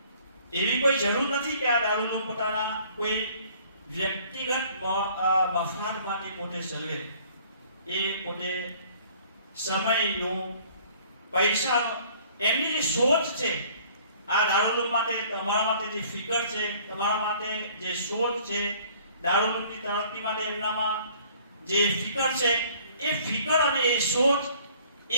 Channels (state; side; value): inverted; both; correlation -0.55